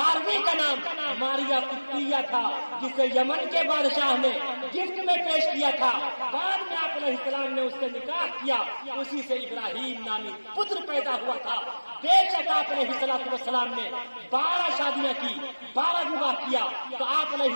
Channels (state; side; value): inverted; both; correlation -1.00